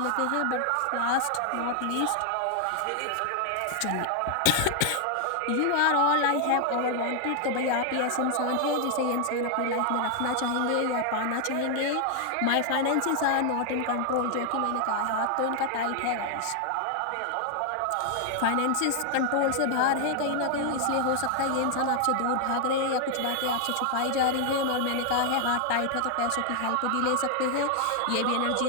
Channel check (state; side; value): different; both; correlation 0.00